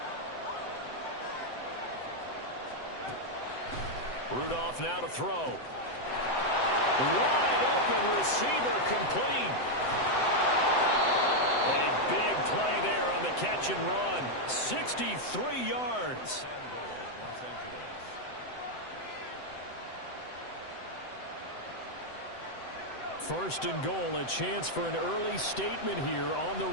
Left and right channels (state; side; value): late; right; 7.9 ms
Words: Rudolph now to throw. Wide open receiver complete. A big play there on the catch and run. 63 yards. First and goal, a chance for an early statement here on the